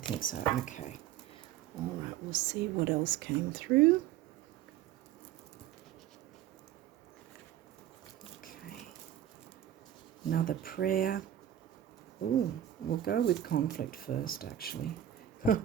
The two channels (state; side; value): quieter; left; 11.6 dB